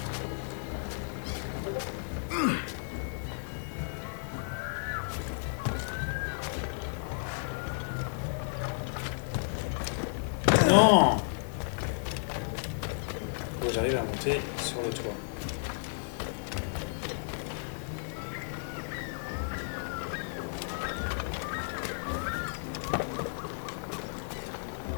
Non! Faut que j'arrive à monter sur le toit.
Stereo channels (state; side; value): silent; right; digital silence